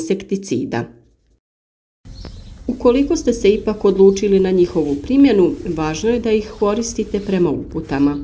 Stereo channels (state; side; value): identical; both; correlation 1.00